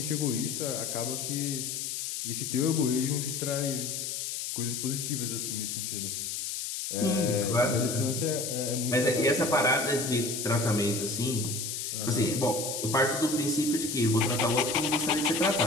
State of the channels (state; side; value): noise; left; hiss, 4 dB below the sound